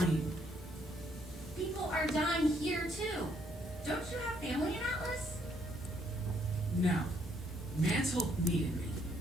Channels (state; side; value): normal; both; correlation 0.70